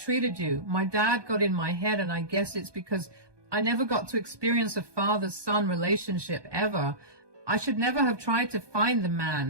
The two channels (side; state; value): left; late; 1.2 ms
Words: you. My dad got in my head, and I guess it's because I never got to experience a father-son relationship ever. I should never have tried to find the